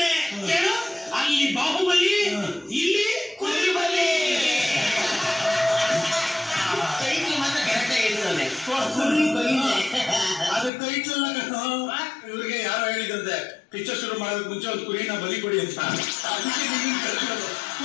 ಕೇಳು. ಅಲ್ಲಿ ಬಾಹುಬಲಿ, ಇಲ್ಲಿ ಕುರಿಬಲಿ. ಅದು ಟೈಟ್ಲ್ ಇವ್ರಿಗೆ ಯಾರೋ ಹೇಳಿದಂತೆ, ಪಿಕ್ಚರ್ ಶುರು ಮಾಡೋದಕ್ಕೆ ಮುಂಚೆ ಒಂದು ಕುರಿನ ಬಲಿ ಕೊಡಿ ಅಂತ.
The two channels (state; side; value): drops out; right; at 10.7 s